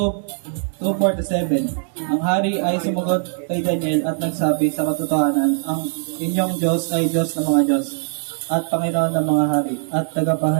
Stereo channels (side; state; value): left; silent; 65 dB below the other